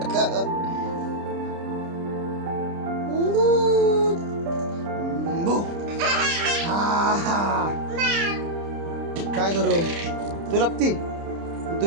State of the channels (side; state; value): left; late; 30 ms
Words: काय करू? तू लपती?